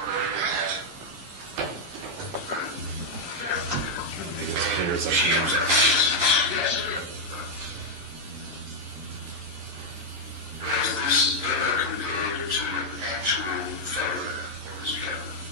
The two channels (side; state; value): left; late; 11 ms